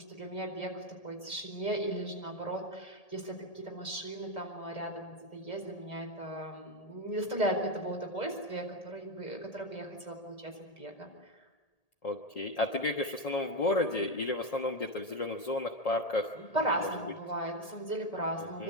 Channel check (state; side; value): late; right; 1.8 ms